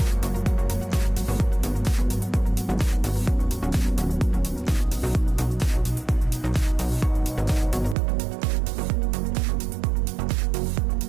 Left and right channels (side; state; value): left; drops out; at 8.0 s